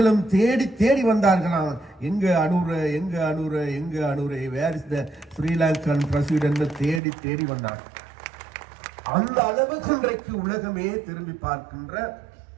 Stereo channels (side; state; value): left; drops out; at 7.0 s